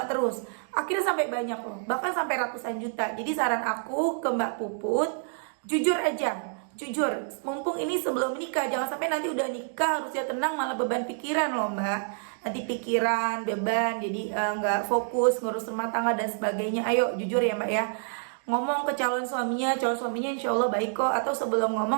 terus. Akhirnya sampai banyak loh, bahkan sampai ratusan juta. Jadi saran aku ke Mbak Puput, jujur aja. Jujur, mumpung ini sebelum nikah, jangan sampai nanti udah nikah harusnya tenang malah beban pikiran loh Mbak. Nanti pikiran, beban, jadi nggak fokus ngurus rumah tangga dan sebagainya. Ayo jujur ya Mbak ya. Ngomong ke calon suaminya insya Allah baik kok. Atau sebelum ngomong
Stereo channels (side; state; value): left; silent; digital silence